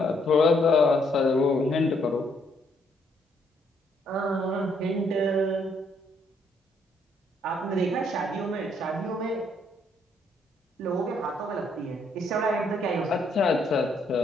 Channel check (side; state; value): both; normal; correlation 0.70